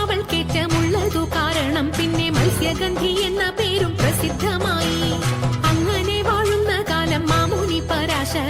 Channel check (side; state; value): both; identical; correlation 1.00